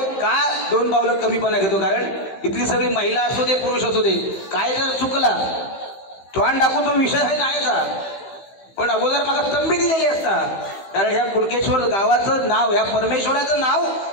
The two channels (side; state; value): right; late; 15 ms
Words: का 2 पावलं कमीपणा घेतो, कारण इथली सगळी महिला असू दे पुरुष असू दे काय जर चुकला तोंड टाकून तो विषय आहे नाही का, पण अगोदर मला तंबी दिलेली असता, कारण ह्या कुणकेश्वर गावाचं नाव ह्या परमेश्वराचं नाव